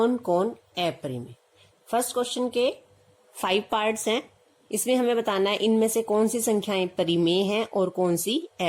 कौन अपरिमेय। फर्स्ट क्वेश्चन के 5 पार्ट्स हैं। इसमें हमें बताना है इनमें से कौन सी संख्याएं परिमेय हैं और कौन सी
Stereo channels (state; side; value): identical; both; correlation 1.00